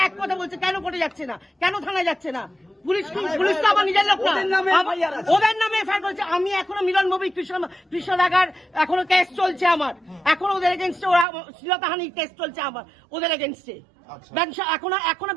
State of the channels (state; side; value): drops out; left; at 11.2 s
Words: এক কথা বলছে, কেন কোর্টে যাচ্ছে না, কেন থানায় যাচ্ছে না? পুলিশ তো আমার নিজের লোক না, ওদের নামে এফআইআর করেছে। আমি এখনো মিলন ভৌমিক, কৃষ্ণ দাগার এখনো কেস চলছে আমার, এখনো ওদের এগেইনস্টে শ্লীলতাহানির কেস চলছে আমার, ওদের এগেইনস্টে এখনো